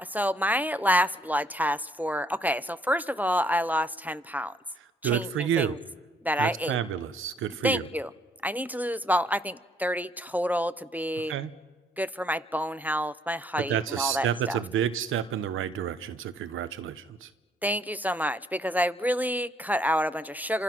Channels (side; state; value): both; normal; correlation 0.65